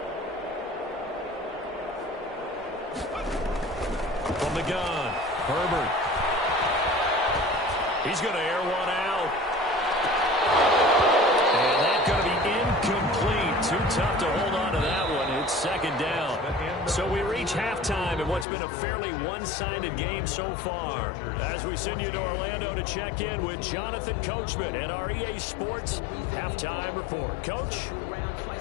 From the gun, Herbert. He's going to air one out. And that's going to be incomplete. Too tough to hold on to that one. It's 2nd down. So we reach halftime in what's been a fairly one-sided game so far. As we send you to Orlando to check in with Jonathan Coachman at our EA Sports Halftime Report. Coach?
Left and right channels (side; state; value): right; drops out; at 18.4 s